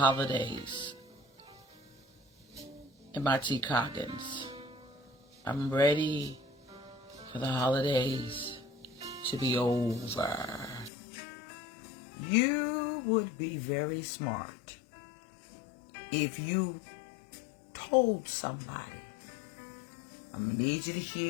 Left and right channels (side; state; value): right; drops out; at 10.9 s